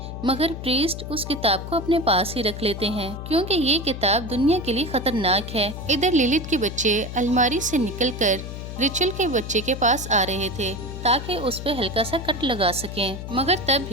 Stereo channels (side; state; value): left; noise; hum, 8 dB below the sound